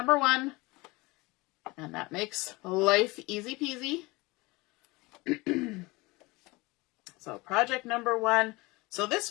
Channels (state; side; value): quieter; right; 23.3 dB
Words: 1, and that makes life easy peasy. So project number 1. So